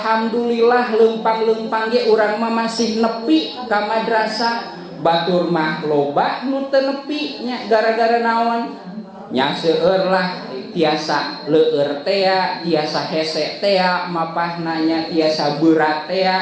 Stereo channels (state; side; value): identical; both; correlation 1.00